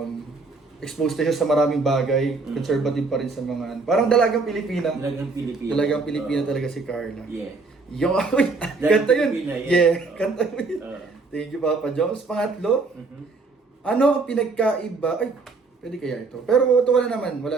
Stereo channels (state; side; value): quieter; left; 4.0 dB